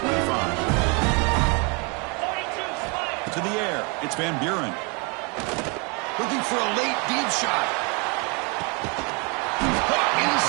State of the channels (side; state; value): left; quieter; 32.3 dB